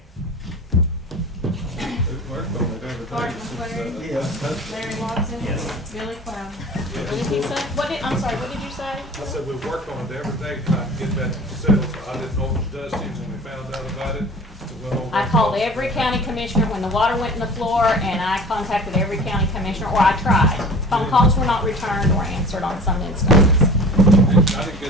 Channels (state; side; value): normal; both; correlation 0.42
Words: We've worked on it every Clark day since, McClary, Yeah. Larry Watson, Yes. Billy Cloud. What did he say? I'm sorry, what did you say? I said we've worked on it every day trying to get that settled. I didn't know it was dusty when we found out about it. We went over I and called talked. every county commissioner when the water went in the floor, and I contacted every county commissioner, or I tried. Phone calls were not returned or answered on some instances. I didn't